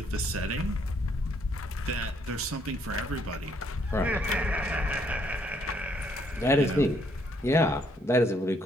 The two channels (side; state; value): both; normal; correlation 0.69